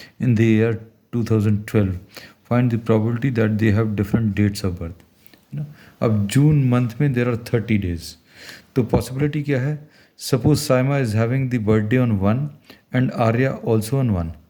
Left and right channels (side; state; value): both; identical; correlation 1.00